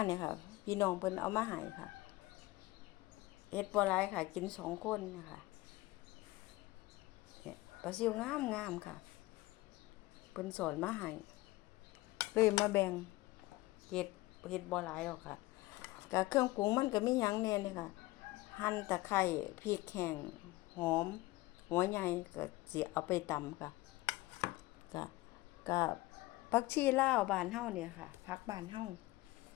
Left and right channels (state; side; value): quieter; right; 19.6 dB